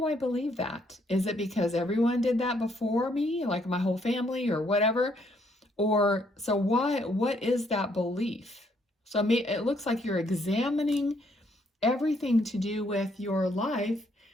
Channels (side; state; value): both; normal; correlation 0.70